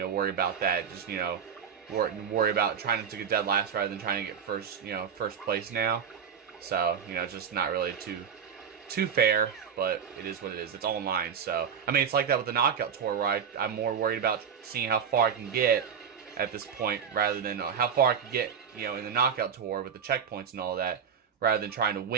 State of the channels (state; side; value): quieter; left; 7.3 dB